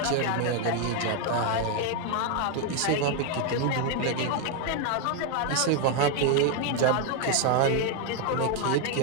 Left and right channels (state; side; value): different; both; correlation 0.01